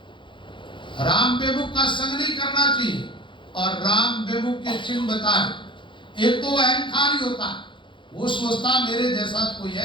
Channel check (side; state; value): right; late; 0.24 ms